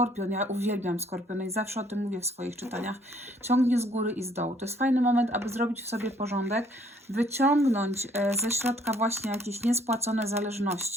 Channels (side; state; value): both; normal; correlation 0.62